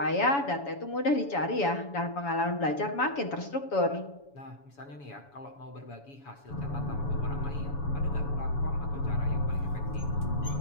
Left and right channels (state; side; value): late; right; 7.1 ms